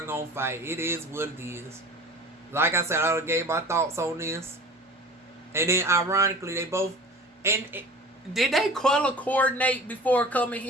fight. It is what it is. Like I said, I gave my thoughts on this. And then ironically, they both, and did they color coordinate before coming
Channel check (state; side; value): normal; both; correlation 0.41